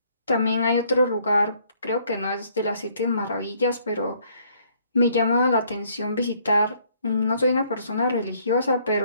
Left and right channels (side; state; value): both; inverted; correlation -0.65